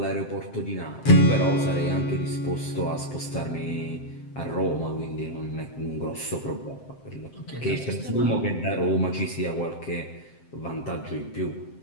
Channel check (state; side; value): late; right; 7.7 ms